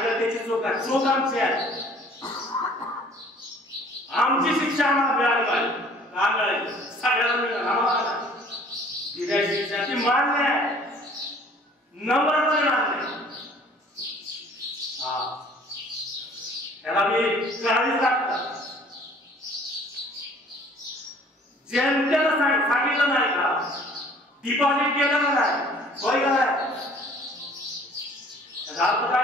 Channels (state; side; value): normal; both; correlation 0.53